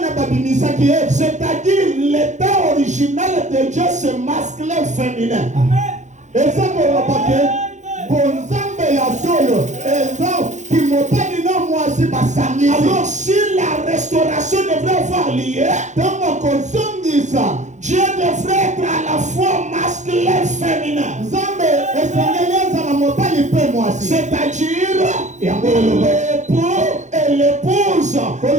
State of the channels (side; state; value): left; late; 0.35 ms